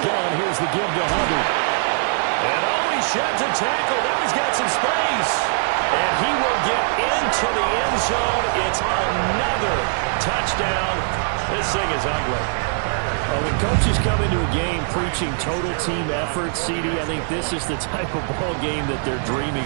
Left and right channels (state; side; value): silent; left; digital silence